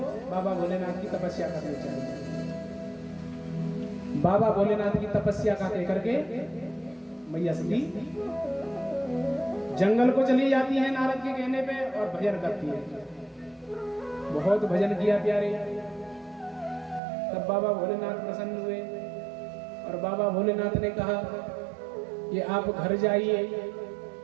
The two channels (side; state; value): left; drops out; at 17.0 s